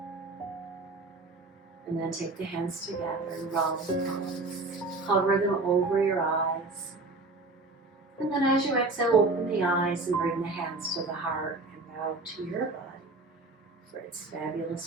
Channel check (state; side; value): quieter; left; 3.3 dB